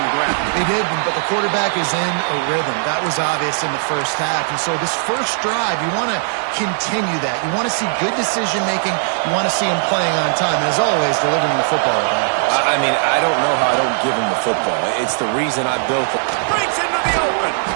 ground. They did, but the quarterback is in a rhythm. That was obvious in the first half. And so this first drive, you want to continue that. You want to see good decision-making. You want to see him playing on time. And as always, delivering the football. I mean, I don't know how I don't give him the football. It's the reason I built it. Breaks into the open.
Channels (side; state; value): left; silent; digital silence